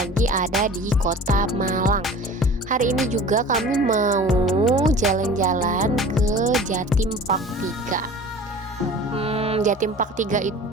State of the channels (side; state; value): both; normal; correlation 0.41